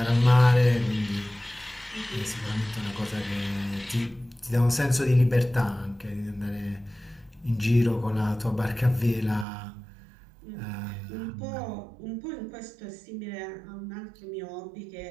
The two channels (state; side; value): drops out; left; at 9.5 s